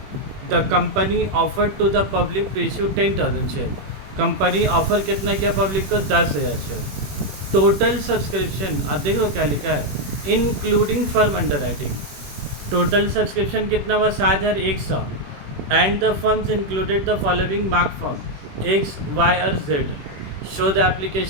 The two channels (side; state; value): left; late; 21 ms